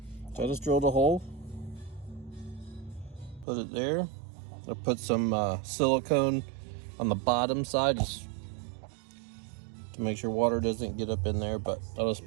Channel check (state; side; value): drops out; left; at 3.5 s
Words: So I just drilled a hole, put it there. I put some silicone on the bottom side just to make sure water doesn't get up in there, but I'll just